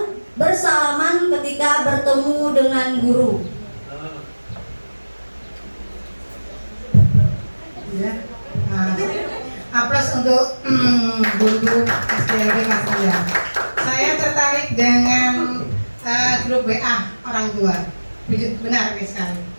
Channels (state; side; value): inverted; both; correlation -1.00